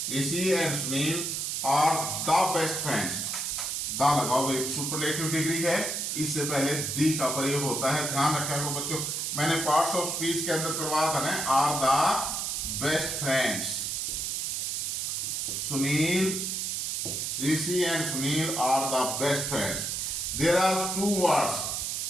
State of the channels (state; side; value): noise; right; hiss, 1 dB below the sound